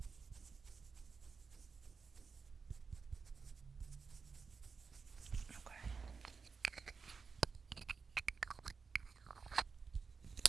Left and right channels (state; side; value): quieter; left; 5.1 dB